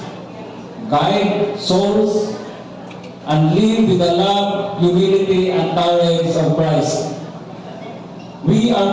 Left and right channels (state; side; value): identical; both; correlation 1.00